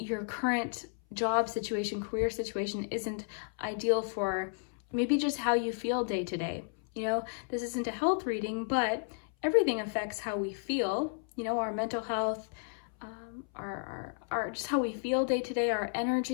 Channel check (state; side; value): silent; right; 56 dB below the other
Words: current job situation, career situation isn't ideal for maybe just how you feel day to day. You know, this isn't a health reading, but everything affects how we feel, you know, our mental health, our just how we feel day to day, our